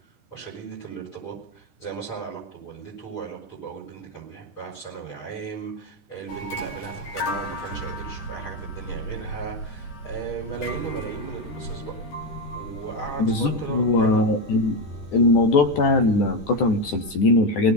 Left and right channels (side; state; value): right; late; 10 ms